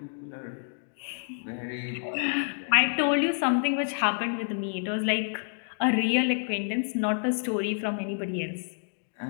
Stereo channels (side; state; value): right; silent; digital silence